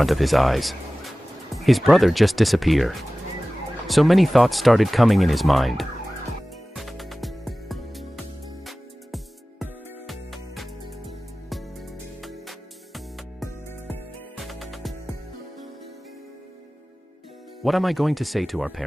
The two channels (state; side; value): normal; both; correlation 0.97